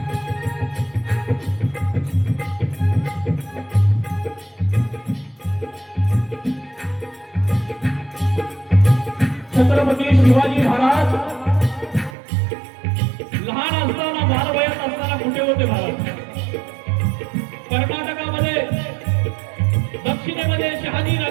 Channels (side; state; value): left; drops out; at 12.2 s